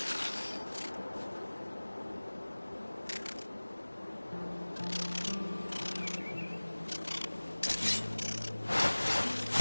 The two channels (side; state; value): both; inverted; correlation -1.00